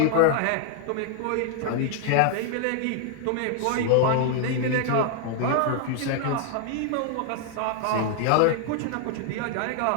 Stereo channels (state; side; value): different; both; correlation 0.00